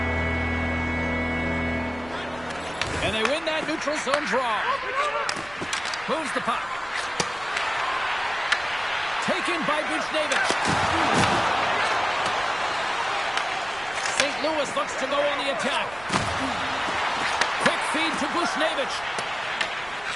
And they win that neutral zone draw. Moves the puck. Taken by Buchnevich. St. Louis looks to go on the attack. Quick feed to Buchnevich.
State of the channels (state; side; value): noise; right; rumble, 20 dB below the sound